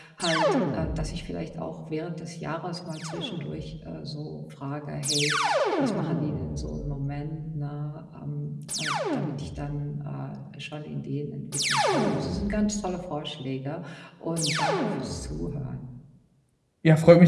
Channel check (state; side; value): identical; both; correlation 1.00